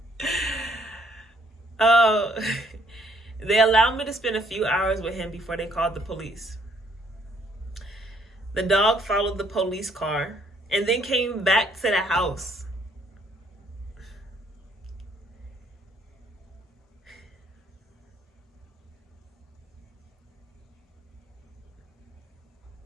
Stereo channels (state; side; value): normal; both; correlation 0.66